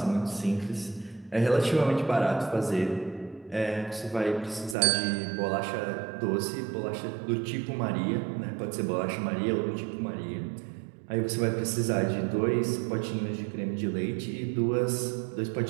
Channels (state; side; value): drops out; left; at 4.8 s